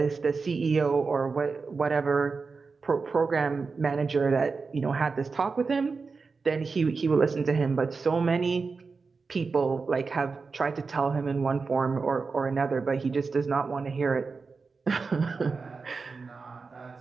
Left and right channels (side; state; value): left; quieter; 4.6 dB